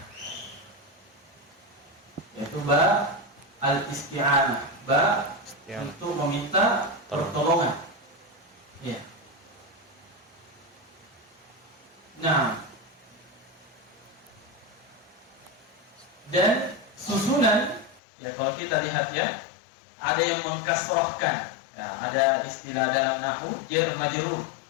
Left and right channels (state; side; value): drops out; right; at 18.0 s